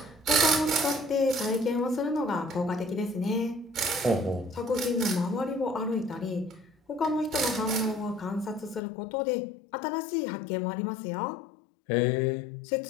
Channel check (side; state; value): right; drops out; at 8.8 s